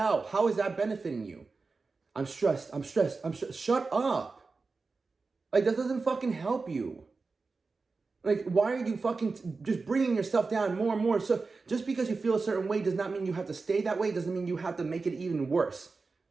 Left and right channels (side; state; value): left; quieter; 4.2 dB